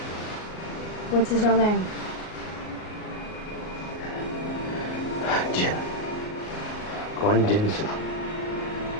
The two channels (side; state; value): right; late; 38 ms